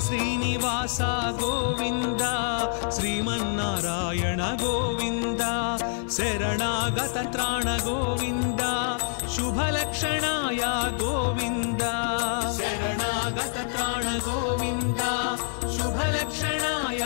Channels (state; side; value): silent; right; 61 dB below the other